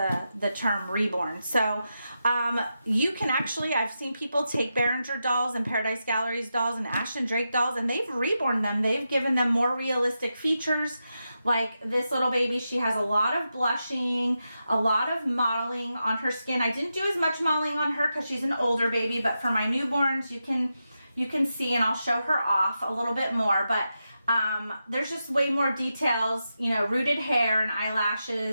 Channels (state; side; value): inverted; both; correlation -0.88